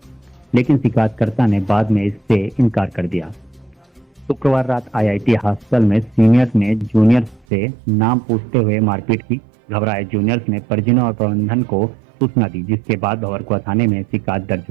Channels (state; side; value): drops out; left; at 7.5 s